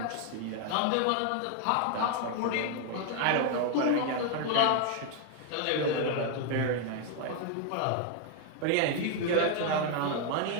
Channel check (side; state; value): both; different; correlation 0.00